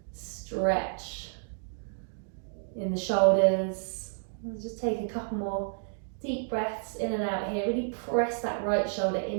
stretch in the shoulders. We'll just take a couple more deep breaths in and out here. Really press that right shoulder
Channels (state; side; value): silent; left; digital silence